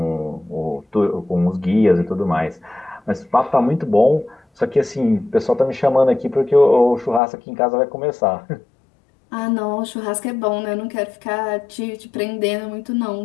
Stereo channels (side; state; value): right; drops out; at 7.2 s